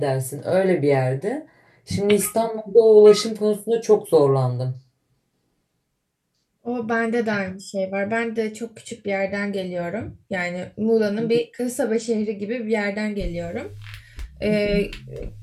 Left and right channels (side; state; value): both; identical; correlation 1.00